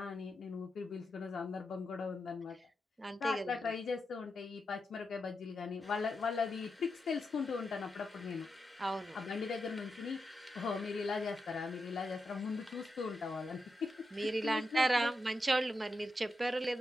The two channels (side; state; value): both; normal; correlation 0.87